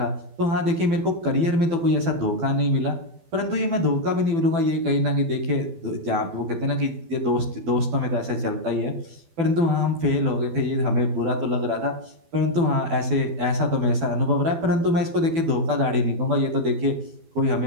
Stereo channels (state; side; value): late; left; 12 ms